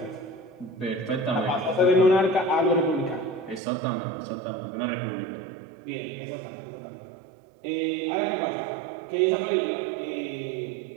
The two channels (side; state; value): left; drops out; at 3.6 s